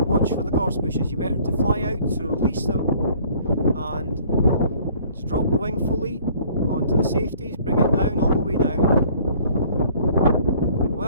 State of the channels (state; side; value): inverted; both; correlation -0.55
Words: watch for the gorse bushes. You better to fly out, so release them. And just drop the wing fully onto the safeties, bring it down, all the way down.